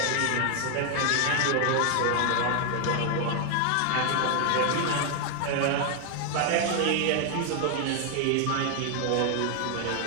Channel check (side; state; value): both; different; correlation 0.00